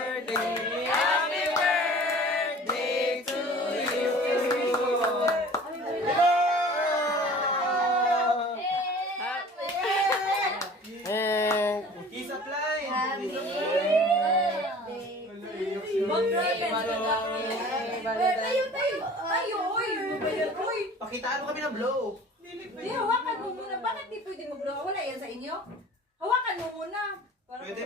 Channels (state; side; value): normal; both; correlation 0.45